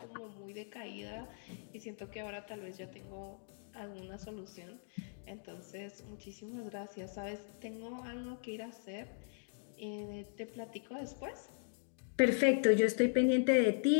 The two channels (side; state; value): right; silent; digital silence